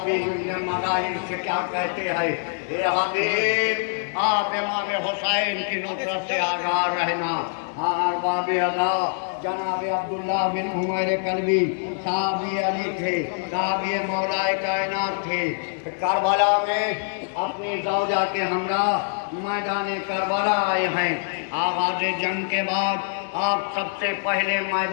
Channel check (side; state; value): right; silent; 62 dB below the other